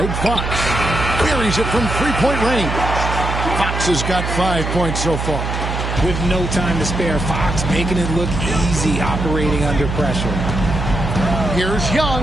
Fox. Buries it from three-point range. Fox has got 5 points so far. With no time to spare, Fox making it look easy operating under pressure. Here's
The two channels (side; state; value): right; noise; hum, 3 dB below the sound